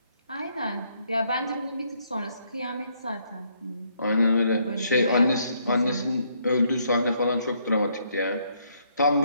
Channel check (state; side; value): inverted; both; correlation -0.71